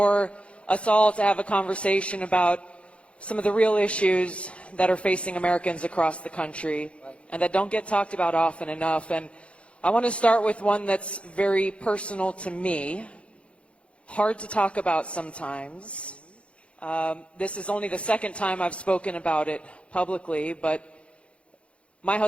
us all to have a conversation about some of the real issues that are facing Americans across the country and that don't get talked about often enough. And I want to start with one that's very personal to me, hard to talk about sometimes. This is only the second time I've spoken about it publicly, but my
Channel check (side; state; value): right; late; 0.061 ms